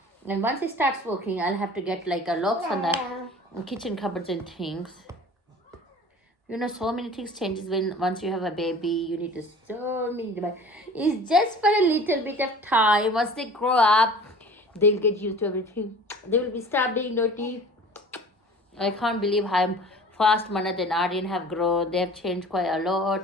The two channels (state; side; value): normal; both; correlation 0.43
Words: And once it starts working, I'll have to get like a locks on the kitchen cupboards and things. So many things changes once you have a baby. You need to so many devices. It's just for a little bit of time. Once they grow up, they'll get used to everything. They will be start being naughty. I can't believe how fast Manat and Aryan have grown. They have changed quite a